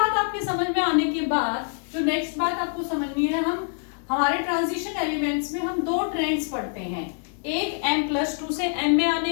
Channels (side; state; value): right; silent; digital silence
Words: आपके समझ में आने के बाद जो नेक्स्ट बात आपको समझनी है, हम हमारे ट्रांजिशन एलिमेंट्स में हम दो ट्रेंड्स पढ़ते हैं, एक M+2 से M में